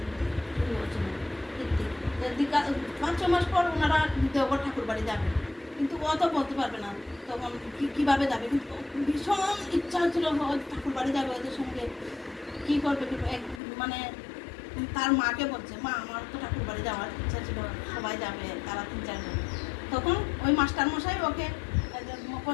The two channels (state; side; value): drops out; right; at 13.6 s